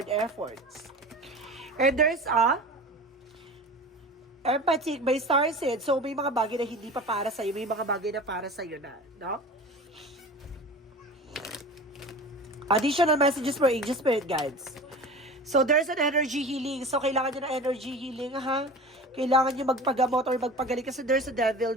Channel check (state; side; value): normal; both; correlation 0.35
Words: efforts. And there's a empathy by star seed. So, may mga bagay na hindi pa para sa'yo. May mga bagay na para sa'yo na, no? Additional messages for angel spirit guides. So, there's an energy healing. So, kailangan nyo ng energy healing, ha? Kailangan nyo magpagamot or magpagaling kasi there's a devil